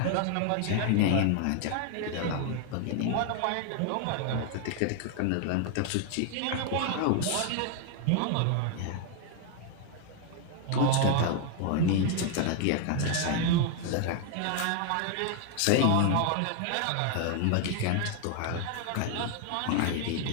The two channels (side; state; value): both; different; correlation 0.00